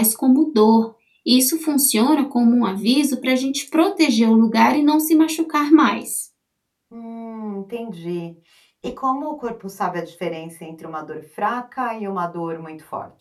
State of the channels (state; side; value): identical; both; correlation 1.00